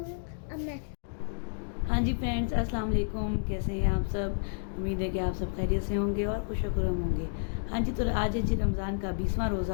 अब मैं हाँ जी फ्रेंड्स, अस्सलाम वालेकुम। कैसे हैं आप सब? उम्मीद है कि आप सब खैरियत से होंगे और खुशखुरम होंगे। हाँ जी, तो आज है जी रमज़ान का 20वां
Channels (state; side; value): silent; right; digital silence